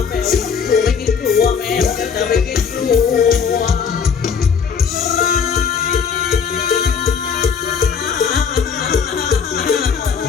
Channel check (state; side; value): quieter; right; 6.4 dB